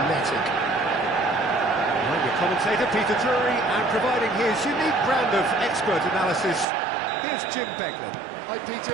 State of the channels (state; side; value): drops out; left; at 6.7 s